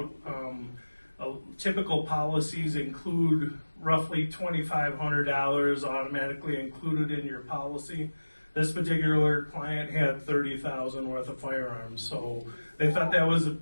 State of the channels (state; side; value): inverted; both; correlation -1.00